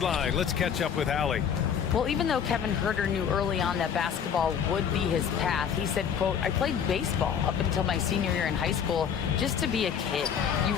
let's catch up with Allie. Well, even though Kevin Huerter knew early on that basketball would be his path, he said, quote, I played baseball up until my senior year in high school just to be a kid. You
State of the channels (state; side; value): quieter; right; 7.7 dB